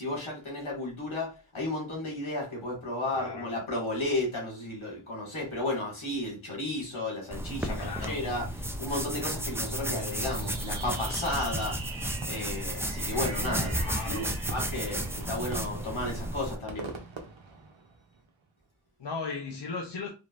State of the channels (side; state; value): both; normal; correlation 0.17